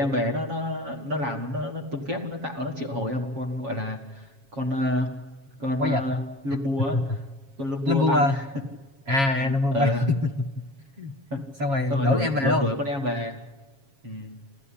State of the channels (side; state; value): left; late; 7.3 ms